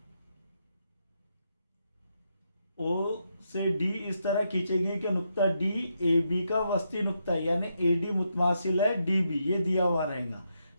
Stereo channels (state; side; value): inverted; both; correlation -0.81